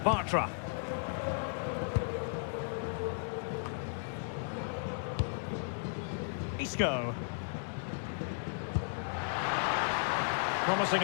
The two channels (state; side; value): silent; right; digital silence